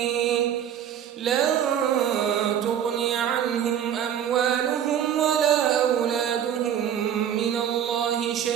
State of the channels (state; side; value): quieter; left; 9.5 dB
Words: لن تغني عنهم أموالهم ولا أولادهم من الله